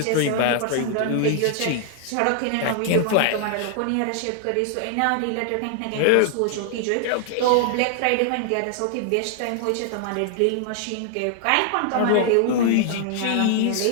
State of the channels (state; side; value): different; both; correlation 0.00